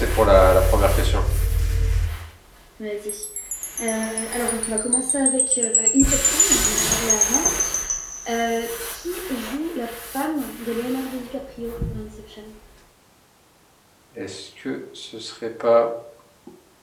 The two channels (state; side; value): identical; both; correlation 1.00